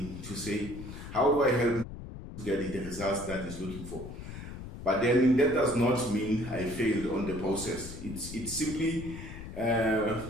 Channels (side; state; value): left; noise; rumble, 11 dB below the sound